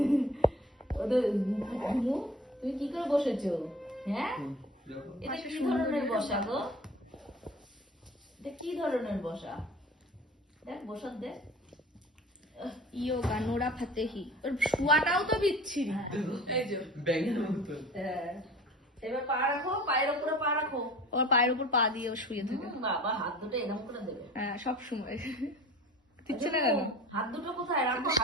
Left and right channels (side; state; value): both; normal; correlation 0.42